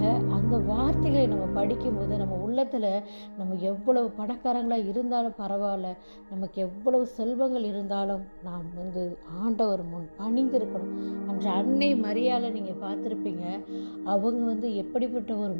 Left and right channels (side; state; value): both; inverted; correlation -1.00